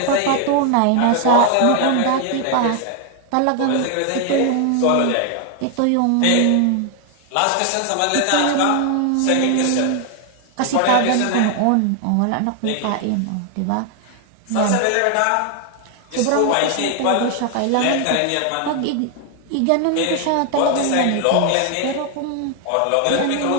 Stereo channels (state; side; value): different; both; correlation 0.00